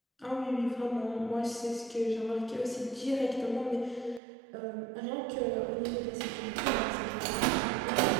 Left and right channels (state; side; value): drops out; left; at 4.2 s